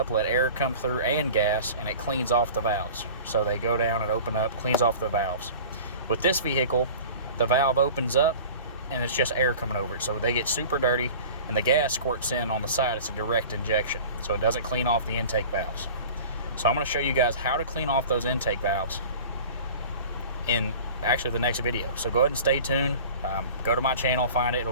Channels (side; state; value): both; inverted; correlation -0.40